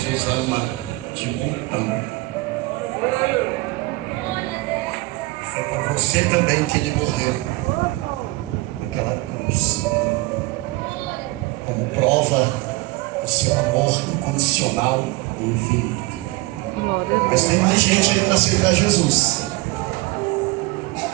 ama de montão. Foi por você também que ele morreu naquela cruz, como prova do seu amor incondicional e infinito. Mas tem mais gente aí para aceitar Jesus.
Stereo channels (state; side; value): quieter; left; 22.1 dB